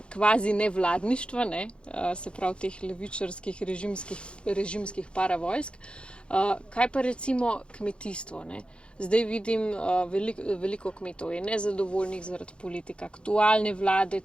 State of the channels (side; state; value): right; late; 0.056 ms